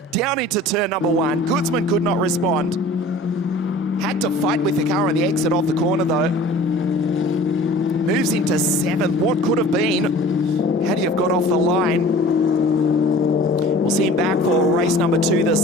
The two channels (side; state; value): both; normal; correlation 0.45